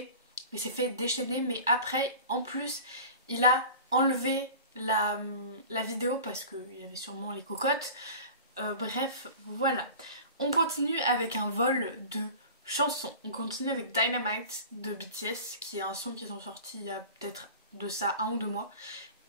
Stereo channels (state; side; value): inverted; both; correlation -0.38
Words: Il s'est fait déchaîner, mais après, en plus, il a enlevé la vidéo parce qu'il y avait sûrement les cocottes. Bref, voilà. On continue avec un vol de chansons. On continue avec Dynamite de BTS, qui est un son qu'ils ont sorti il y a peut-être de ça 1 ou 2 mois.